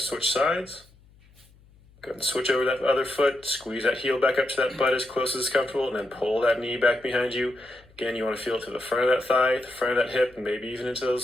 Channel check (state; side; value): noise; left; hum, 28 dB below the sound